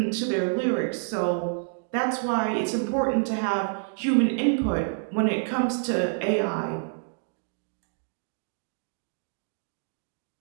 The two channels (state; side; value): silent; left; digital silence